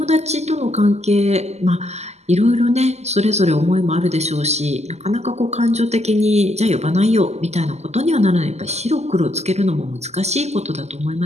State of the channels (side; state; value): left; late; 0.32 ms